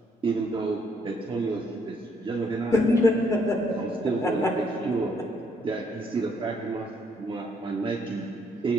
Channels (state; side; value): normal; both; correlation 0.69